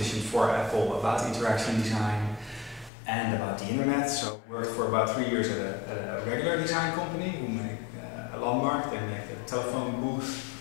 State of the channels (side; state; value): right; drops out; at 2.9 s